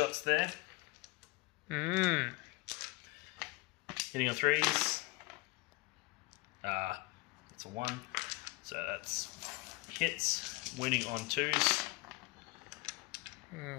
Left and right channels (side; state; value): right; quieter; 24.8 dB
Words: there. Hitting on 3s. That's a 1. So that's hits. Winning on 2s.